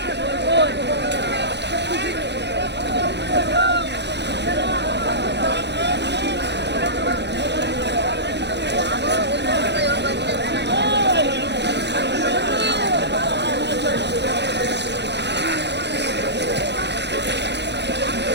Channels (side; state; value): left; late; 0.50 ms